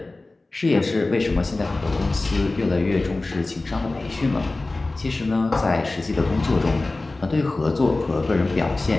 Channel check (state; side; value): quieter; right; 3.1 dB